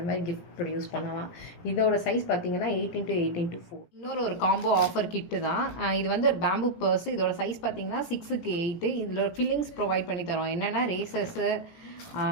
மாதிரி கிஃப்ட் ப்ரொடியூஸ் பண்ணலாம். இதோட சைஸ் பார்த்தீங்கன்னா 8x8x4. இன்னொரு ஒரு காம்போ ஆஃபர் கிட்டு தான் இது. வந்து ஒரு பேம்பு பர்ஸ். இதோட சைஸ் பார்த்தீங்கன்னா 6x8. இதில் ஃபில்லிங்ஸ் ப்ரொவைட் பண்ணி தரோம். என்னென்னா razors,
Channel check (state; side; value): late; right; 17 ms